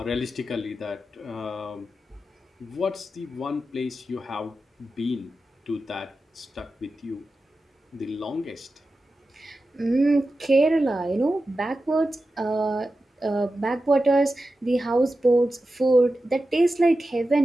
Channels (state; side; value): normal; both; correlation 0.92